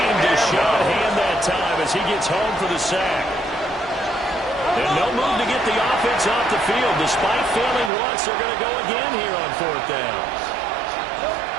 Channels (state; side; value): drops out; left; at 7.9 s